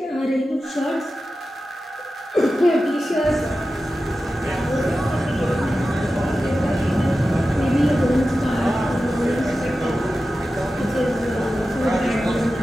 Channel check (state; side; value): normal; both; correlation 0.93